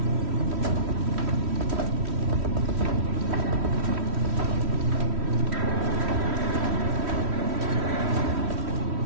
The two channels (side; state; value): left; late; 3.1 ms